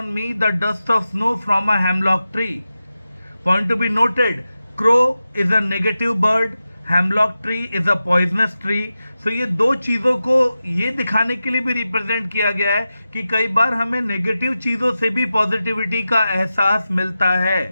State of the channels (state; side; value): inverted; both; correlation -0.93